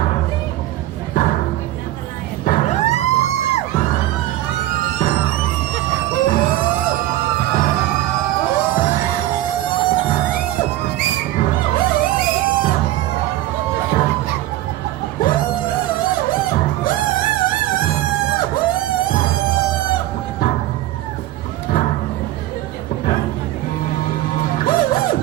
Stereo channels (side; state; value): left; quieter; 15.1 dB